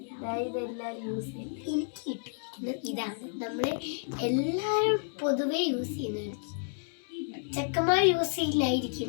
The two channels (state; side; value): silent; right; digital silence